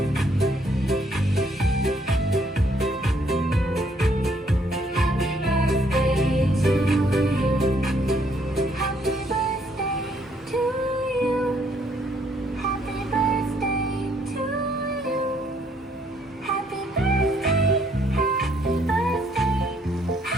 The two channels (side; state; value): both; normal; correlation 0.68